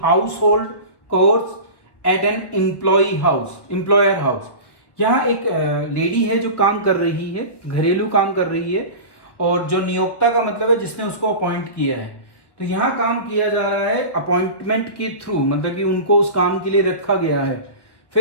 house hold course eight an employer house. यहाँ एक लेडी है जो काम कर रही है, घरेलू काम कर रही है, और जो नियोक्ता का मतलब है जिसने उसको अपॉइंट किया है। तो यहाँ काम किया जा रहा है अपॉइंटमेंट के थ्रू, मतलब कि उनको उस काम के लिए रखा गया है।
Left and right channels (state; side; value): late; right; 1.4 ms